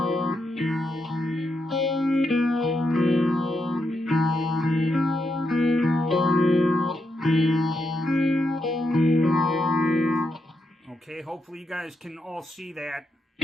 Okay, hopefully you guys can all see that.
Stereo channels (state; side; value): normal; both; correlation 0.83